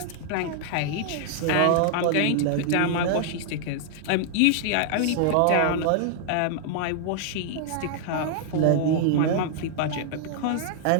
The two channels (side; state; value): both; different; correlation -0.01